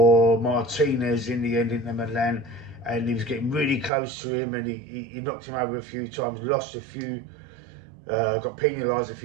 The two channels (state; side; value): drops out; left; at 3.9 s